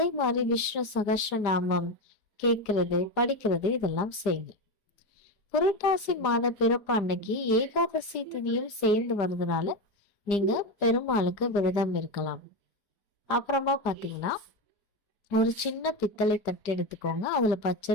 மாதிரி விஷ்ணு சகஸ்ர நாமம் கேட்கறது, படிக்கிறது இதெல்லாம் செய்யுங்க. புரட்டாசி மாத பிறப்பு அன்னைக்கு ஏகாதசி திதியும் சேர்ந்து வர்றதுனால நீங்க பெருமாளுக்கு விரதம் இருக்கலாம். அப்புறமா பாத்தீங்கன்னா ஒரு சின்ன பித்தளை தட்டு எடுத்துக்கோங்க. அதுல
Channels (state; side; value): late; right; 5.0 ms